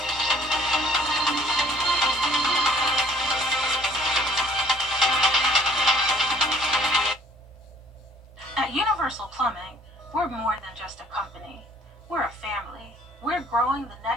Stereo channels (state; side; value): normal; both; correlation 0.58